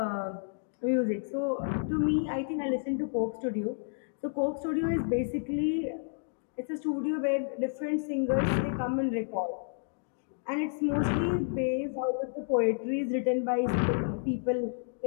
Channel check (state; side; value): silent; right; digital silence